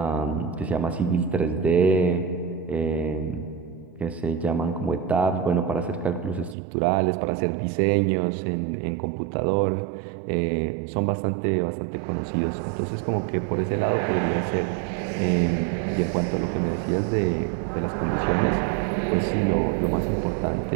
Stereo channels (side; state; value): left; drops out; at 6.6 s